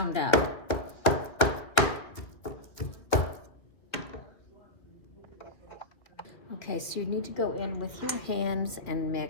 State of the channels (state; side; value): late; right; 2.2 ms